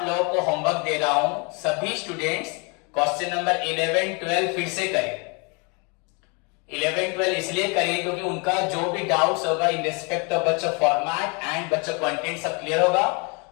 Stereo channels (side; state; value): right; quieter; 32.3 dB